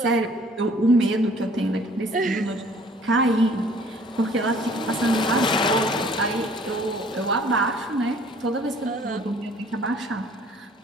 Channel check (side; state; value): both; normal; correlation 0.55